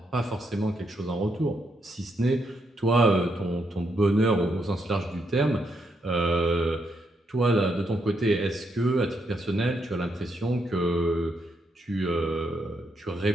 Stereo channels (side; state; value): both; normal; correlation 0.78